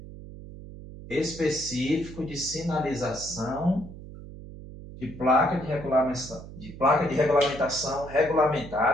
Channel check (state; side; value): noise; right; hum, 14 dB below the sound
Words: específico de sinalização de placa de regulamentação